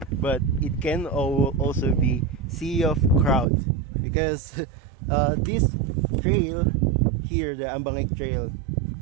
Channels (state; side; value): drops out; left; at 3.5 s